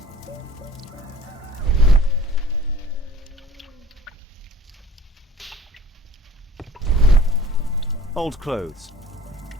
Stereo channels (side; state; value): both; normal; correlation 0.46